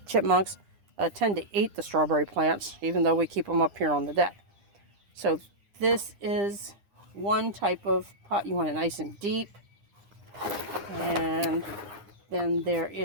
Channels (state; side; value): late; left; 9.9 ms